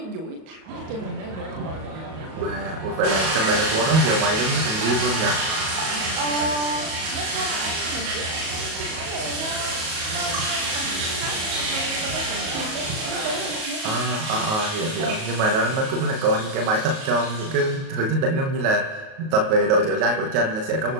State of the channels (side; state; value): left; late; 37 ms